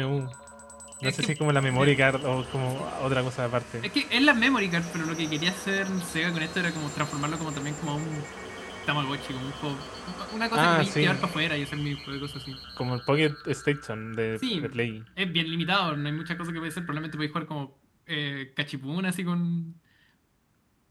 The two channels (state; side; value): identical; both; correlation 1.00